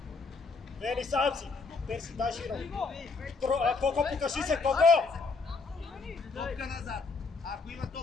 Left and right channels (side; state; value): right; quieter; 4.2 dB